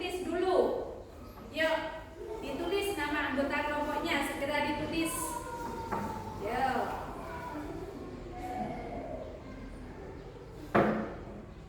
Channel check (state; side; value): identical; both; correlation 1.00